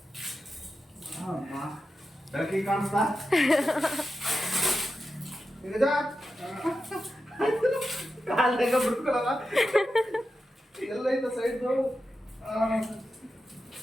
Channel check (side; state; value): both; normal; correlation 0.90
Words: ಬೆಳಕಿಗೆ ಕಾಣಿಸ್ತಾ ಕಾಲ್ದಾಗ ಬಿಡ್ಕೊಳಲ್ಲ ಎಲ್ಲ ಐತ ಸೈಡ್ದು.